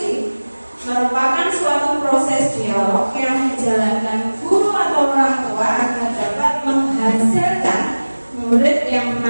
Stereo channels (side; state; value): both; inverted; correlation -1.00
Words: Merupakan suatu proses dialog yang dijalankan guru atau orang tua agar dapat menghasilkan murid yang